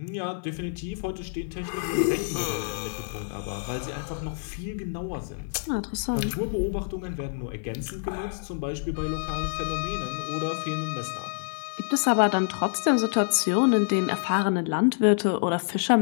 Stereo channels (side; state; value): right; silent; 60 dB below the other